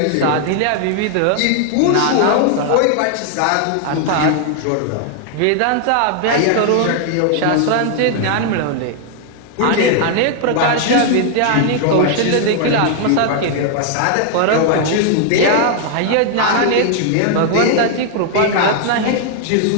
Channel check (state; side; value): different; both; correlation 0.00